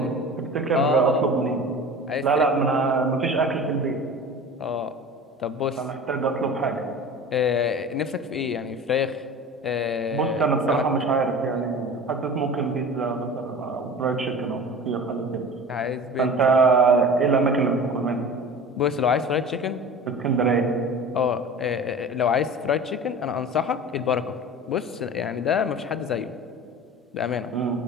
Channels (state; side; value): normal; both; correlation 0.37